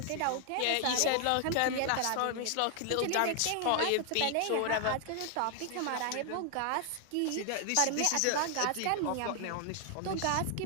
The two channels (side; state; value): both; different; correlation 0.00